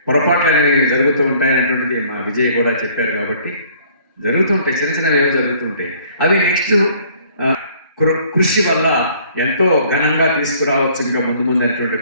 పొరపాట్లు అనేవి జరుగుతూ ఉంటాయనేటువంటిది మా విజయ్ కూడా చెప్పారు. కాబట్టి జరుగుతుంటాయి, చిన్న చిన్నవి ఏవో జరుగుతుంటాయి. అవి నెక్స్ట్ కృషి వల్ల ఎంతో ఘనంగా తీసుకురావచ్చు ఇంకా ముందు అనేటువంటి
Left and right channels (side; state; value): both; inverted; correlation -0.57